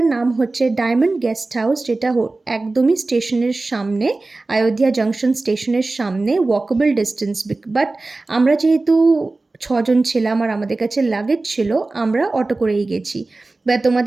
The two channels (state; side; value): quieter; left; 3.3 dB